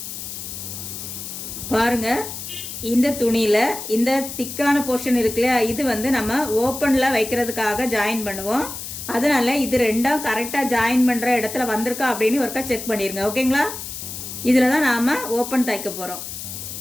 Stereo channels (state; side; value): noise; left; hiss, 9 dB below the sound